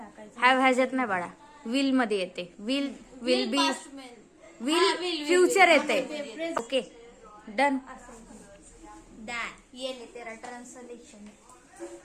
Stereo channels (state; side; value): identical; both; correlation 1.00